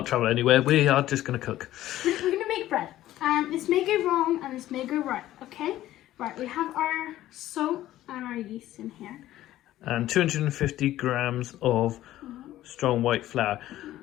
travel anywhere, we are just going to cook. We're going to make bread. And this may go wrong and this may go right, okay? Right, we have our salt and our yeast in here. And 250 grams of strong white flour.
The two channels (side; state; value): right; quieter; 14.2 dB